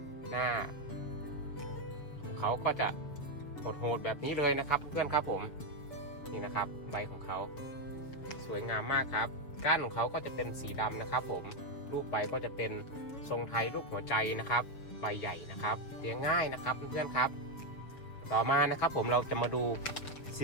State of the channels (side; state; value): right; late; 7.1 ms